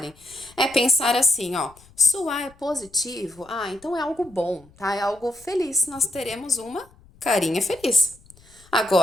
é pensar assim, ó, se o A é positivo, então é algo bom, tá? É algo feliz, nós teremos uma carinha feliz.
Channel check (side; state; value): left; noise; rumble, 27 dB below the sound